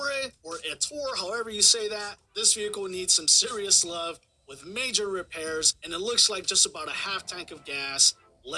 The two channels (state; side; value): identical; both; correlation 1.00